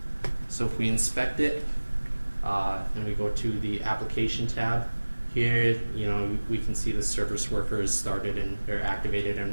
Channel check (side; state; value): both; inverted; correlation -1.00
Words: So if we inspect it, and we go to the application tab, here, we can see the service worker is started and they're activated